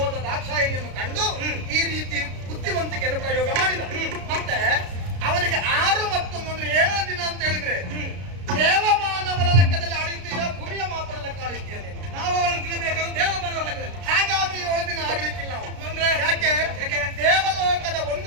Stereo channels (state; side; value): late; left; 33 ms